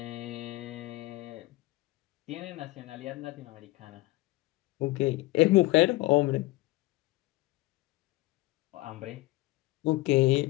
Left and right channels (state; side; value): quieter; right; 20.2 dB